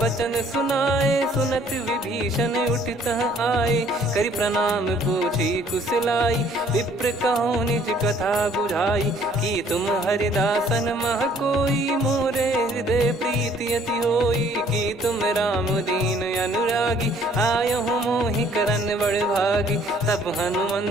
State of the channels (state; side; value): normal; both; correlation 0.59